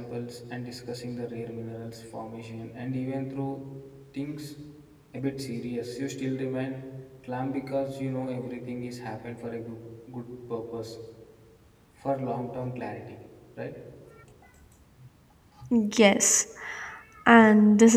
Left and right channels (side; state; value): both; identical; correlation 1.00